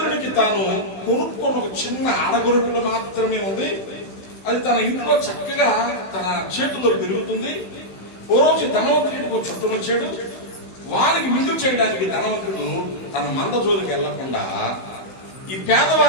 తాను కొనుక్కున్న ఒక చిన్న ఆడగొర్రెపిల్ల మాత్రమే ఉంది. అది తన ఇంట్లో చక్కగా తన చేతుల్లో పెరుగుతుంది. ఓ రోజు ధనవంతుడికి ఒక చుట్టం వచ్చాడు. వారికి విందు చేయడానికి ధనవంతుడు తన మంద జోలికి వెళ్లకుండా ఈ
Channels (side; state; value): right; late; 15 ms